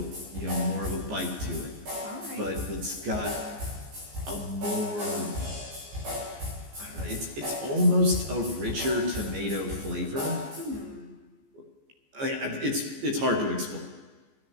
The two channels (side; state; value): left; late; 14 ms